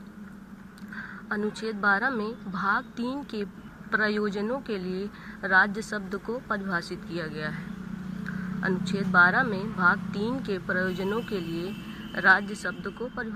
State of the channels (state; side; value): identical; both; correlation 1.00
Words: 12 में भाग 3 के प्रयोजनों के लिए राज्य शब्द को परिभाषित किया गया है। अनुच्छेद 12 में भाग 3 के प्रयोजनों के लिए राज्य शब्द को